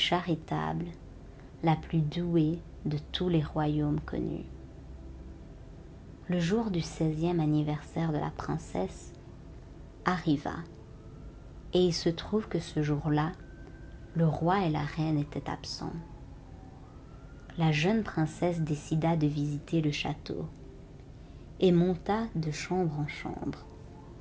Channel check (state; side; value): identical; both; correlation 1.00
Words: la plus douée de tous les royaumes connus. Le jour du 16e anniversaire de la princesse arriva, et il se trouve que ce jour-là, le roi et la reine étaient absents. La jeune princesse décida de visiter le château et monta de chambre en chambre,